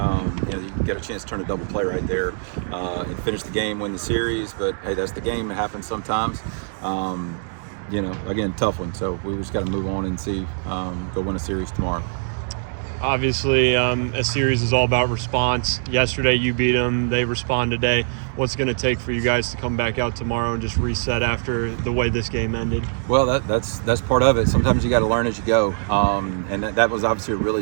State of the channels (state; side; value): silent; left; 64 dB below the other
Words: you get a chance to turn a double play right there and finish the game, win the series. But hey, that's the game. It happens sometimes. Again, tough one. So we just got to move on and see, go win a series tomorrow. Obviously, a series is all about response. Yesterday, you beat them. They respond today. What's going to take for you guys to come back out tomorrow and just reset after the way this game ended? Well, that's part of it. Sometimes you got to learn as you go, and that was obviously a